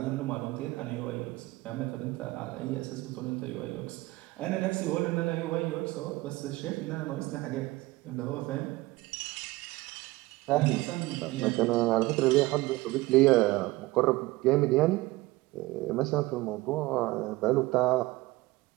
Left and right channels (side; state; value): left; quieter; 20.0 dB